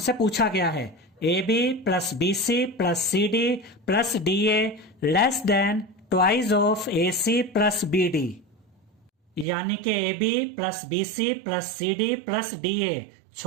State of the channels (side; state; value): left; drops out; at 9.5 s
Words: पूछा गया है, AB plus BC plus CD plus DA less than twice of AC plus BD, यानी कि AB plus BC plus CD plus DA